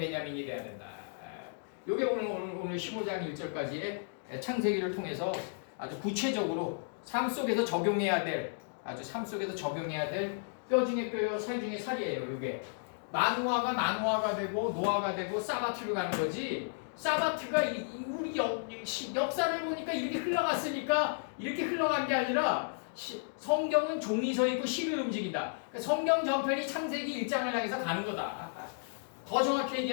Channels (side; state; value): right; silent; digital silence